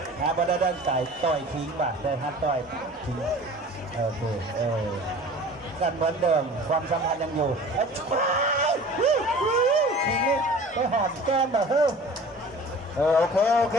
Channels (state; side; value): normal; both; correlation 0.43